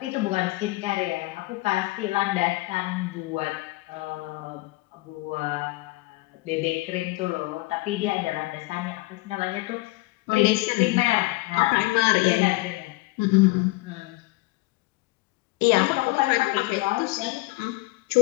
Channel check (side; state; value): right; quieter; 22.0 dB